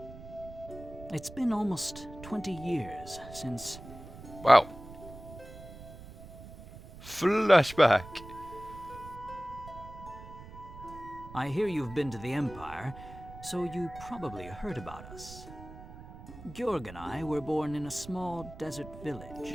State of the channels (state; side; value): noise; right; rumble, 15 dB below the sound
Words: It's been almost 20 years since... Wow. Flashback. I hear you've been to the Empire, so you probably heard about us. Georg and I were born in a small desert village.